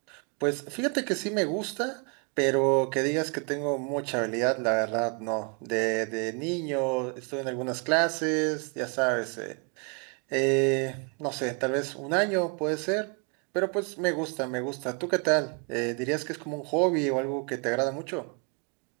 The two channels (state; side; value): quieter; left; 36.1 dB